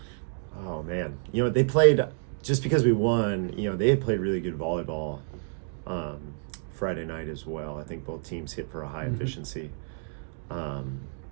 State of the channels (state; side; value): silent; left; 59 dB below the other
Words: Oh man, they played, just because we won. They had played really good volleyball Friday night as well. I think both teams hit for a high efficiency.